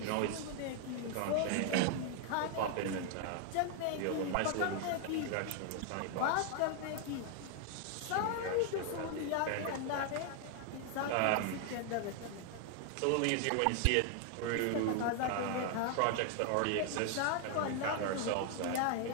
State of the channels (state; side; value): different; both; correlation 0.00